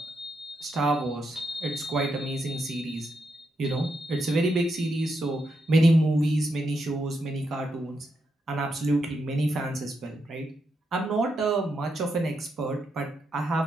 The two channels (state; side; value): normal; both; correlation 0.83